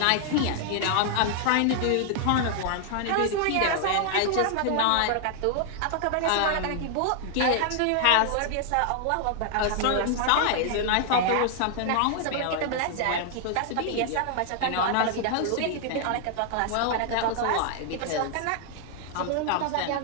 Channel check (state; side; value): different; both; correlation 0.00